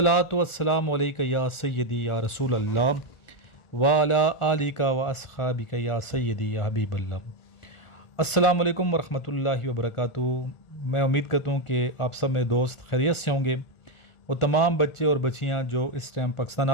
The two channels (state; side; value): late; right; 1.5 ms